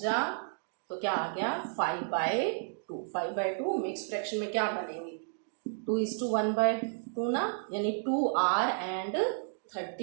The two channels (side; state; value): left; silent; digital silence